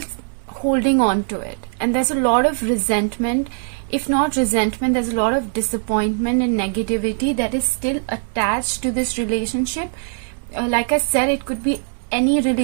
holding on to it, and there's a lot of resentment. If not resentment, there's a lot of disappointment and negativity that is still attached to this relationship. Like I said, it could be any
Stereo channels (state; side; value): silent; left; digital silence